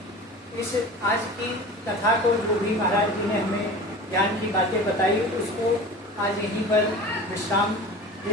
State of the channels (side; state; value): both; normal; correlation 0.36